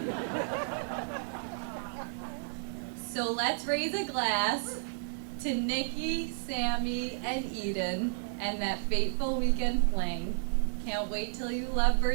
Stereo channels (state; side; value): silent; left; digital silence